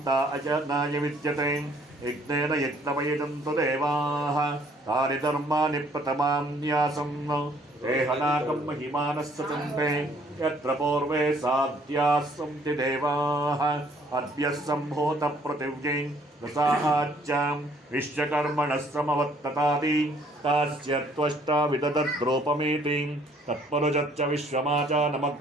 अजनाय विद्यते यज्ञेन यज्ञमयजन्तु देवाः तानि धर्माणि प्रथमान्यासं देहनाकं महिमानः सचन्ते यत्र पूर्वे साध्याः सन्ति देवाः अद्य सम्भूतपृथिव्यै रसाच्चां विश्वकर्मणः समवत्ततादि तस्य त्वष्टा विदधद्रूपमेति तत्पुरुषश्च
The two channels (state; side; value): normal; both; correlation 0.62